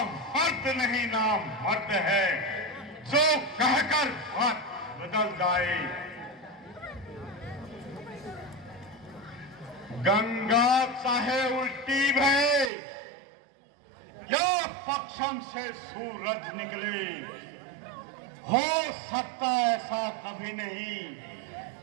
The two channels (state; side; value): drops out; left; at 12.7 s